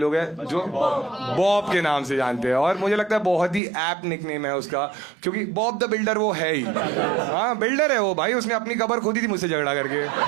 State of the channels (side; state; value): left; drops out; at 3.6 s